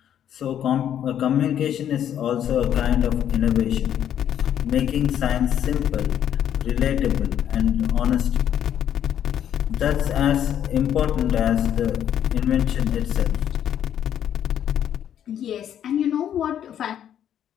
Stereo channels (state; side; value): quieter; right; 10.0 dB